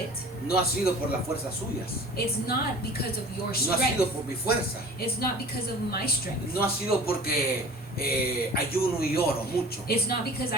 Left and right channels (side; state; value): both; normal; correlation 0.43